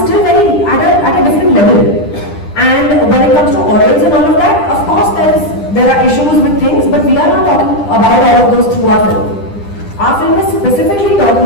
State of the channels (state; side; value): late; right; 10 ms